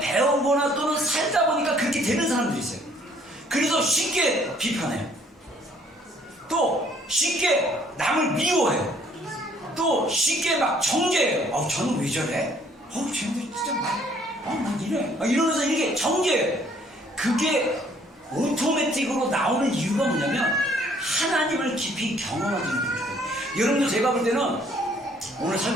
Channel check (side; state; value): both; normal; correlation 0.61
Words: 또는 살다 보니까 그렇게 되는 사람들이 있어요. 그래서 쉽게 비판해요. 또 쉽게 남을 미워해요. 또 쉽게 막 정죄해요. 저는 왜 저래? 쟤는 진짜 난 이래. 이러면서 이렇게 정죄해요. 그게 오토매틱으로 나오는 이유가 뭐냐면 하나님을 깊이 경험하지 못해요. 여러분들 제가 볼 때는 오늘